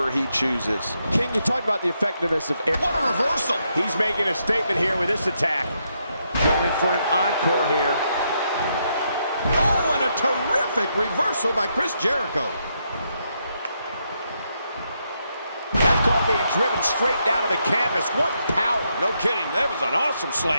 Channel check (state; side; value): inverted; both; correlation -0.79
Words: he chooses. King, you talked about the effectiveness of air. What a reversal. He's making a statement here with this attack. Going for an encore here. Oh, and a terrific reversal by Chris Jericho. That's called being driven straight down to the canvas. What power. No kidding, that was an awesome